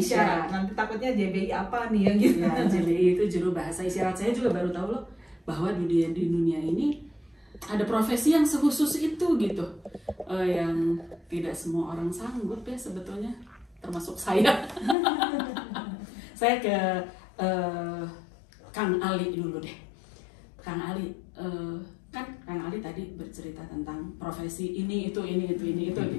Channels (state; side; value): drops out; right; at 15.0 s